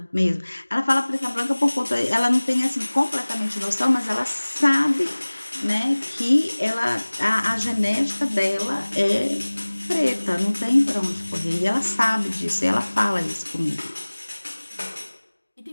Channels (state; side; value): inverted; both; correlation -1.00